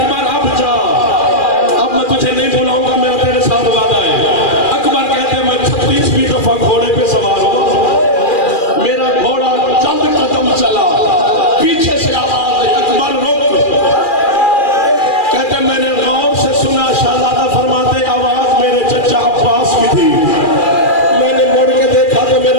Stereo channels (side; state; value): right; late; 2.4 ms